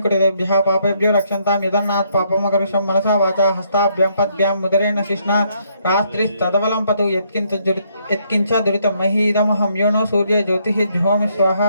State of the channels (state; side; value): inverted; both; correlation -0.71